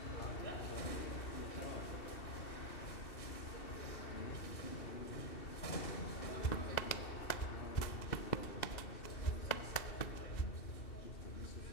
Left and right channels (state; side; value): late; right; 2.7 ms